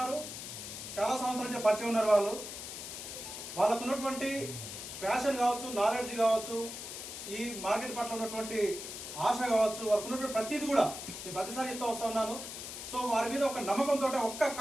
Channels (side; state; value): left; noise; hiss, 8 dB below the sound